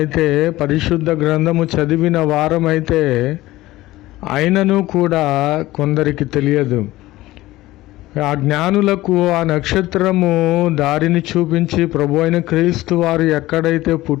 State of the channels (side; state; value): right; quieter; 17.3 dB